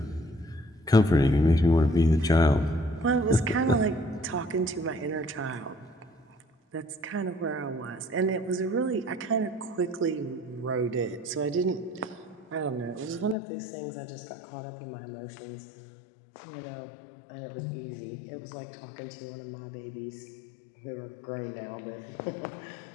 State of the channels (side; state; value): right; drops out; at 13.4 s